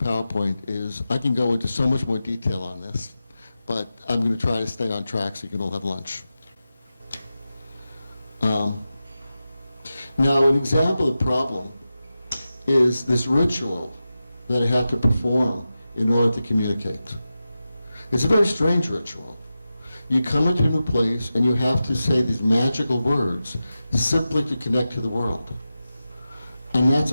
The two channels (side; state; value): both; inverted; correlation -0.93